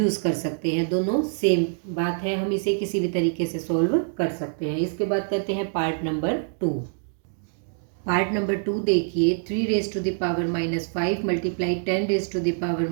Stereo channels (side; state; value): left; silent; digital silence